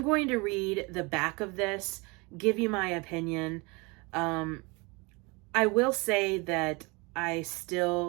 going to read the back of this, give you my opinion. I will say that I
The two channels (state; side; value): quieter; left; 27.4 dB